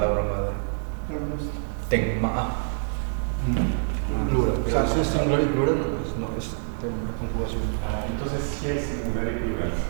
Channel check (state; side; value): silent; left; digital silence